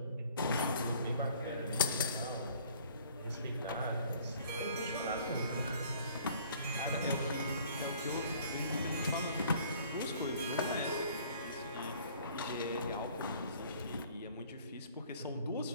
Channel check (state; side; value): inverted; both; correlation -0.55